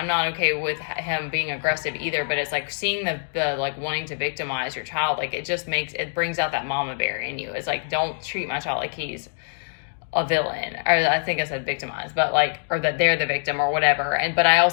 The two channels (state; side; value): silent; right; digital silence